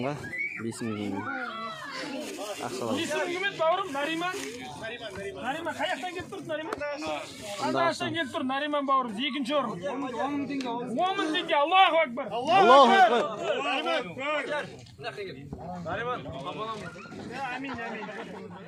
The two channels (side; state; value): both; identical; correlation 1.00